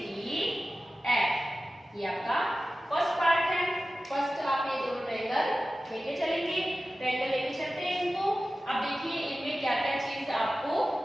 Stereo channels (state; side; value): normal; both; correlation 0.95